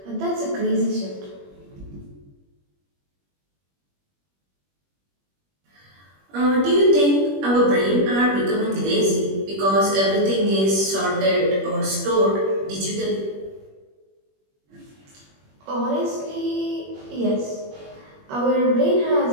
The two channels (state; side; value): late; left; 21 ms